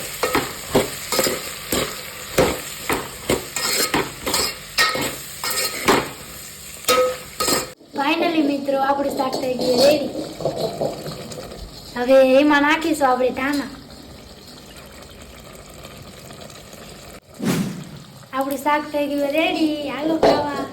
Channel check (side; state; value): both; identical; correlation 1.00